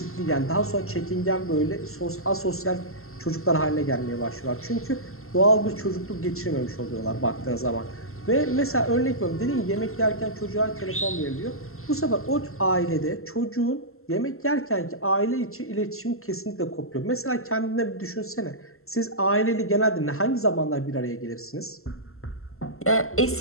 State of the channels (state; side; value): late; right; 0.62 ms